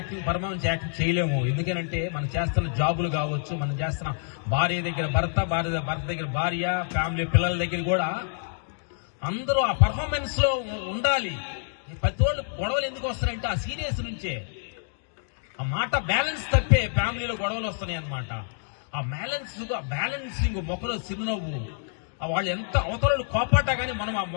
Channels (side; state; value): right; silent; digital silence